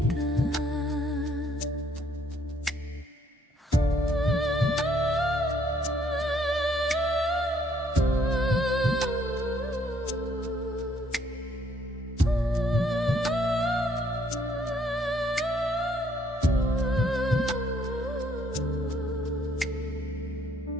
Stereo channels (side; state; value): both; normal; correlation 0.66